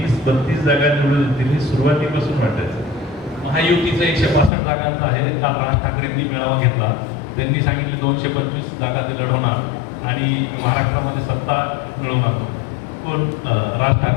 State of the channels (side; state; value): right; drops out; at 4.5 s